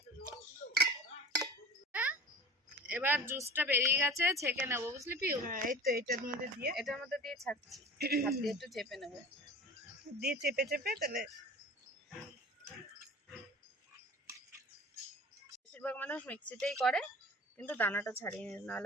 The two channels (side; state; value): both; normal; correlation 0.39